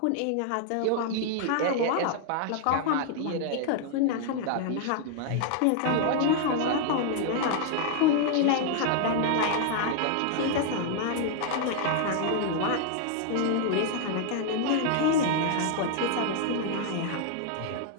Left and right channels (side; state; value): both; different; correlation 0.00